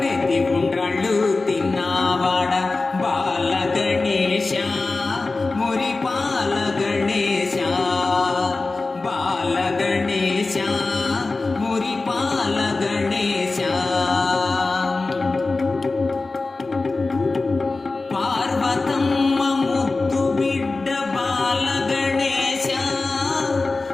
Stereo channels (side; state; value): right; quieter; 3.5 dB